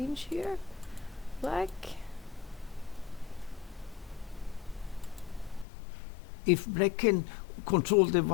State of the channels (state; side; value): drops out; right; at 5.7 s